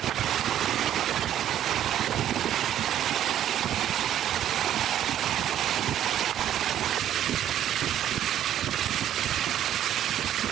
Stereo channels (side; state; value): left; quieter; 11.1 dB